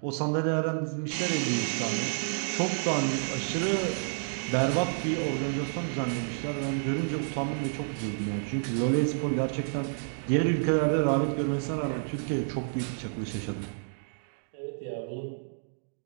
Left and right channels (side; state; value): left; silent; digital silence